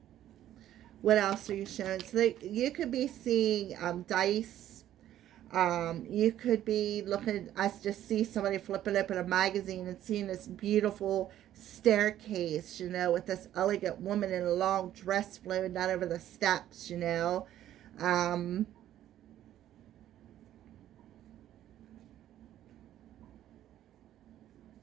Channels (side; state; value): left; quieter; 12.2 dB